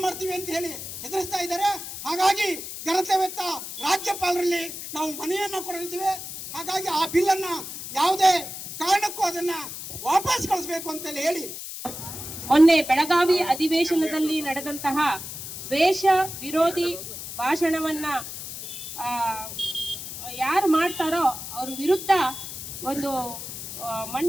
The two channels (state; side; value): noise; left; hiss, 9 dB below the sound